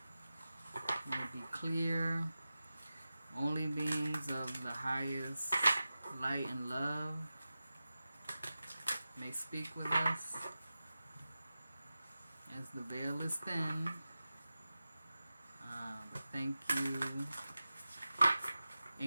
will be clear. Only beings of the highest light and love may speak with us as the veil is thin. Thank you,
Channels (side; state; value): both; inverted; correlation -0.94